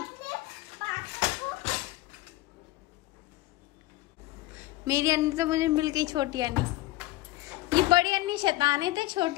मेरी अन्नी तो मुझे मिल गई छोटी अन्नी। ये बड़ी अन्नी शैतान है, तो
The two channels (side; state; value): right; quieter; 17.4 dB